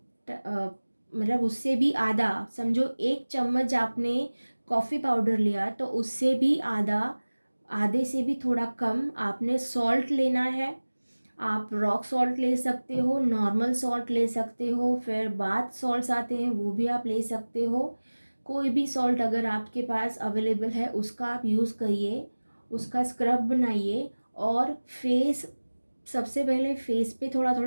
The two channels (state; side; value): inverted; both; correlation -1.00